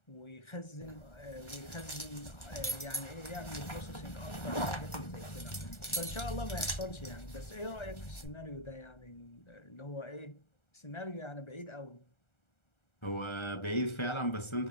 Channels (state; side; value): late; right; 1.3 ms